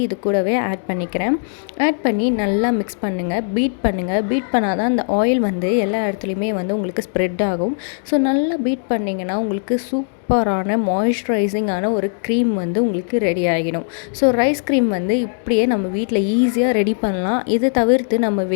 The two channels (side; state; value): right; silent; 66 dB below the other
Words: இது கூடவே ஆட் பண்ணிக்கிறேன். ஆட் பண்ணி நல்லா மிக்ஸ் பண்ணுங்கள், பீட் பண்ணுங்கள். பீட் பண்ணால் தான் அந்த ஆயில் வந்து எல்லா இடத்துலையுமே வந்து உங்களுக்கு ஸ்ப்ரெட் ஆகும். ஸோ நல்லா பீட் பண்ணிங்கன்னா உங்களுக்கு உங்களுக்கு சூப்பரான மாய்ஸ்சரைசிங்கான ஒரு க்ரீம் வந்து உங்களுக்கு ரெடி ஆகிடும். ஸோ ரைஸ் க்ரீம் வந்து இப்படியே நம்ம வீட்டில் ஈஸியாக ரெடி பண்ணலாம். இதை தவிர்த்து நம்ம